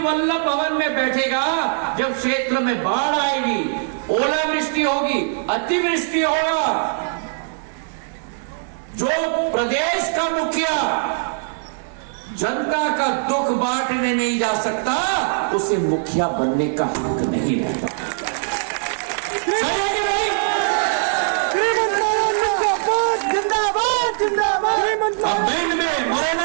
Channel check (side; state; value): left; silent; 65 dB below the other